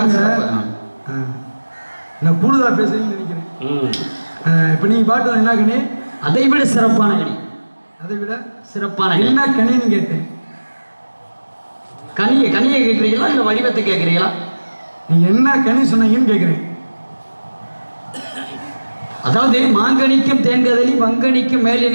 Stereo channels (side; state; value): both; inverted; correlation -1.00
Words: நான் கூடுதலா பேசுறீங்கன்னு நினைக்கிறேன். இப்ப நீங்க பாட்டு என்ன கனி? அதை விட சிறப்பான கனி. அதை விட சிறப்பான என்ன கனின்னு கேட்டேன். கனியை கேட்கிறீங்களா இல்ல வடிவத்தை கேட்கிறீங்களா? நீங்க என்ன கனி சொன்னீங்கன்னு கேட்கிறேன். அதாவது மாங்கனிக்கும் தேன்கதலி வங்கனிக்கும் மேலே